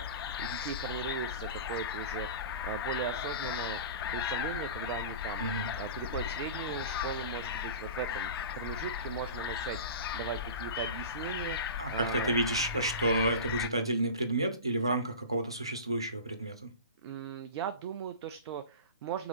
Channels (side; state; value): both; inverted; correlation -0.32